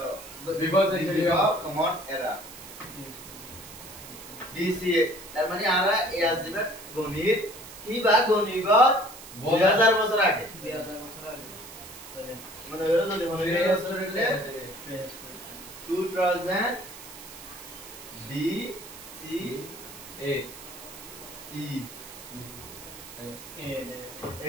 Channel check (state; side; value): noise; right; hiss, 15 dB below the sound